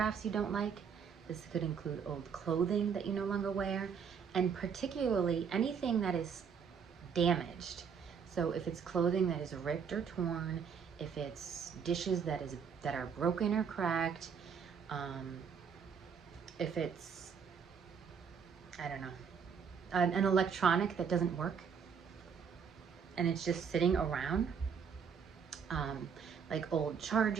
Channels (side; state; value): left; quieter; 6.7 dB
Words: you don't like. This could include old clothing that you no longer wear. And particularly anything that is damaged. So if it's clothing that is ripped or torn, if it's dishes that are broken or cracked, if it's, I don't know, an electronic that doesn't work and it's just sitting around, like old